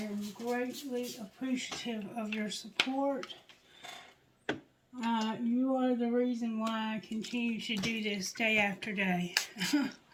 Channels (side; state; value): both; identical; correlation 1.00